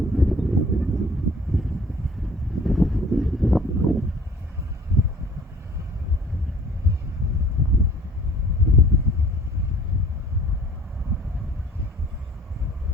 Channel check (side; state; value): both; normal; correlation 0.52